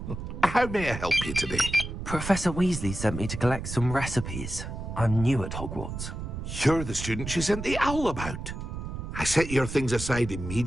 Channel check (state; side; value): noise; right; rumble, 7 dB below the sound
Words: How may I help you today? Professor Weasley sent me to collect some recipes. I'm new at Hogwarts. You're the student she sent the owl about. I set your things aside